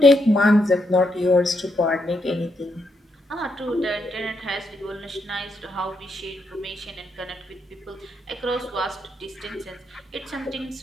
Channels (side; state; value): both; normal; correlation 0.79